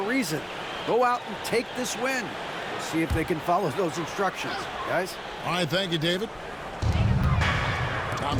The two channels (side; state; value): both; identical; correlation 1.00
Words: reason. Go out and take this win. See if they can follow those instructions, guys. All right, thank you, David.